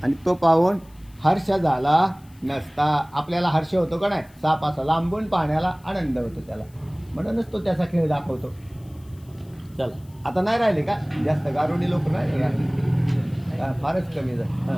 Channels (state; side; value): noise; left; hiss, 29 dB below the sound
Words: आणि तो पाहून हर्ष झाला नसता. आपल्याला हर्ष होतो का नाही? साप असा लांबून पाहण्याला आनंद होतो त्याला. म्हणूनच तो त्याचा खेळ दाखवतो. चला आता नाही राहिले का जास्त गारुडी लोक नाही का? फारच कमी